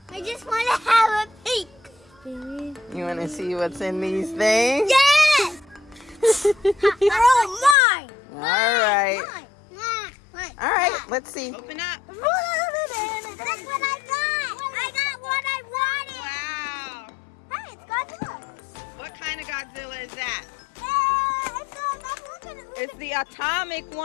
I just want to have a peek. You want to see what's in these things? Yes! They're all mine! All right. Mine. All right, let's see. Open up. That's what I got! I got what I wanted! Wow. Hey, it's Godzilla! What kind of Godzilla is that? Look at it! It's the atomic one.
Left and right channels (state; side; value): drops out; right; at 7.8 s